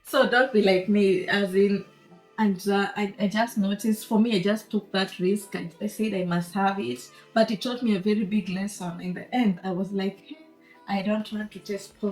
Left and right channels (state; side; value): identical; both; correlation 1.00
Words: so don't be like me, as in, and I just noticed, for me, I just took that risk. I said I must have it, but it taught me a very big lesson. In the end, I was like, "Hey, I don't want to taste